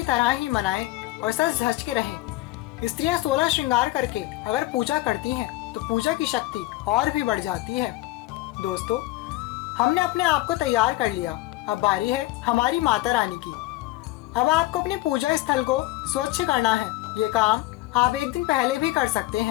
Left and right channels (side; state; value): right; quieter; 18.0 dB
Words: तरह ही मनाएं और सज धज के रहें। स्त्रियां 16 श्रृंगार करके अगर पूजा करती हैं तो पूजा की शक्ति और भी बढ़ जाती है। दोस्तों, हमने अपने आप को तैयार कर लिया, अब बारी है हमारी माता रानी की। अब आपको अपने पूजा स्थल को स्वच्छ करना है। ये काम आप एक दिन पहले भी कर सकते